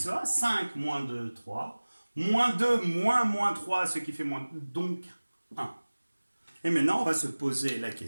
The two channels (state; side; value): inverted; both; correlation -1.00